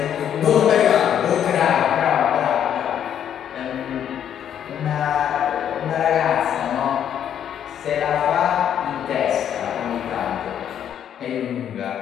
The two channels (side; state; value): right; quieter; 9.5 dB